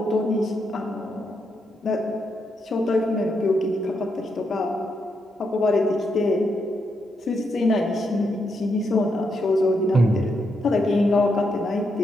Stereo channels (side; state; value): both; normal; correlation 0.81